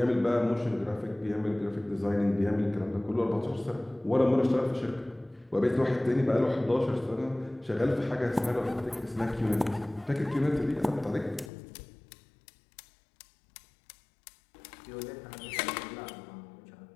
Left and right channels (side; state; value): right; drops out; at 11.5 s